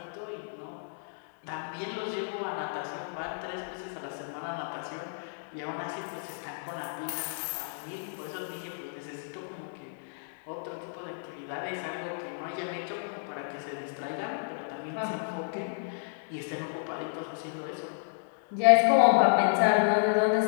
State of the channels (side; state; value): right; silent; 57 dB below the other